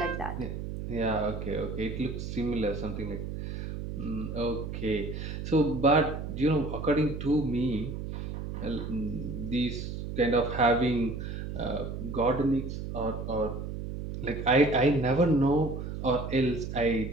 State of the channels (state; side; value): noise; right; hum, 6 dB below the sound